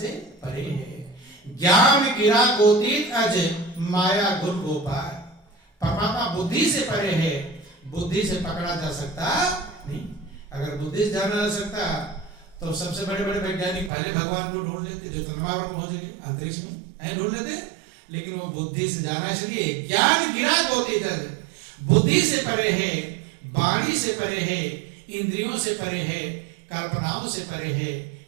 परे है। ज्ञान गिरा गोतीत अज माया गुण गोपाल। परमात्मा बुद्धि से परे है, बुद्धि से पकड़ा जा सकता नहीं। अगर बुद्धि से जाना जा सकता तो सबसे बड़े बड़े वैज्ञानिक पहले भगवान को ढूंढ लेते, जो चंद्रमा पर पहुंच गए अंतरिक्ष में ढूंढ लेते, लेकिन वो बुद्धि से जाना इसलिए ज्ञान गिरा गोतीत अज, बुद्धि से परे है, वाणी से परे है, इंद्रियों से परे है, कल्पनाओं से परे है,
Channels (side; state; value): left; drops out; at 13.9 s